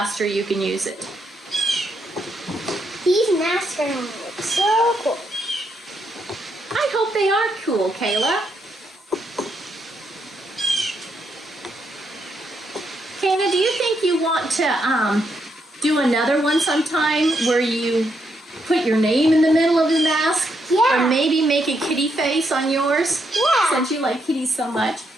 you can use it. These masks are gonna look so cool. I hope they are cool, Kayla. Kayla, do you think you want to do another one sometime where you put your name in the middle of the mask? Yeah. Or maybe make a kitty face on yours? Yeah. Since you like kitties so much.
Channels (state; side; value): normal; both; correlation 0.78